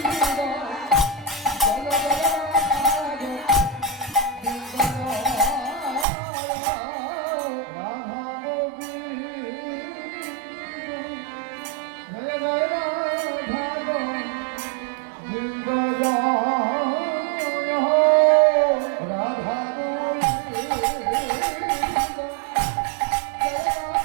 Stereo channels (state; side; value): drops out; left; at 6.1 s